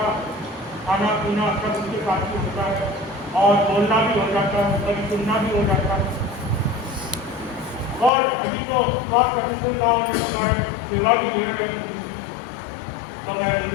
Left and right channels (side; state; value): right; drops out; at 8.1 s